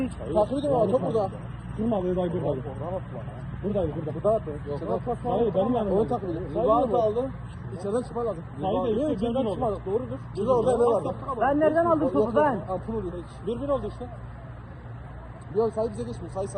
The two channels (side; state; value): both; identical; correlation 1.00